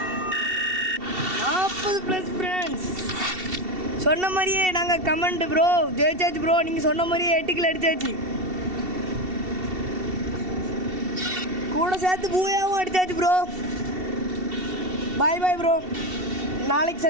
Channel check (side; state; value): left; late; 2.7 ms